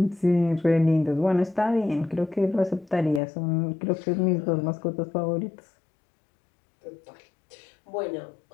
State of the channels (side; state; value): right; drops out; at 3.2 s